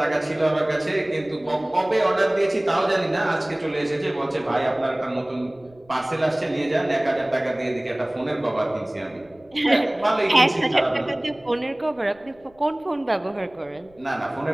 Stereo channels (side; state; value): left; noise; rumble, 28 dB below the sound